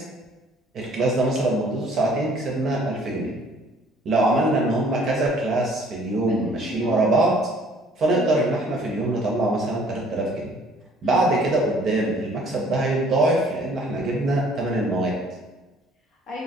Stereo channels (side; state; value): both; normal; correlation 0.57